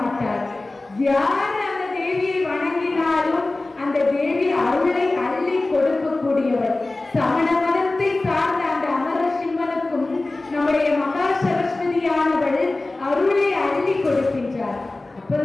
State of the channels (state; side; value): quieter; right; 3.0 dB